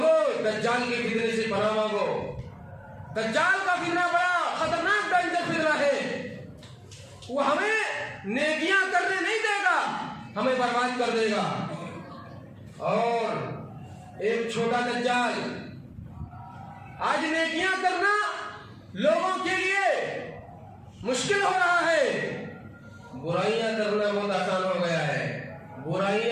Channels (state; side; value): identical; both; correlation 1.00